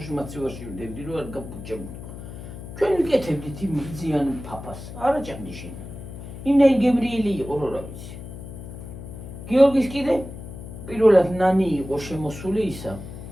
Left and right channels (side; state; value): left; noise; hum, 11 dB below the sound